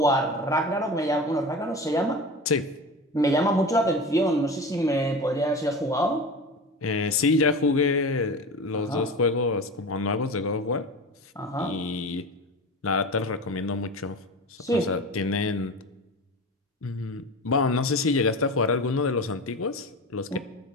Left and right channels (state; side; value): normal; both; correlation 0.30